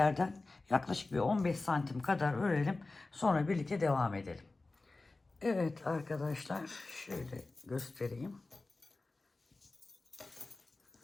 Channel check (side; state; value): right; quieter; 3.3 dB